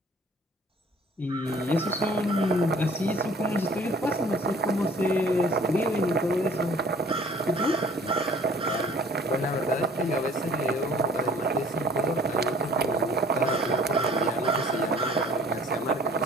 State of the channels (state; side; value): normal; both; correlation 0.52